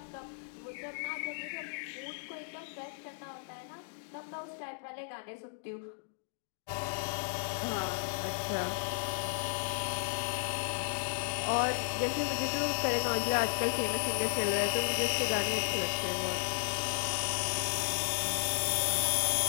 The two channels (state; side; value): silent; right; digital silence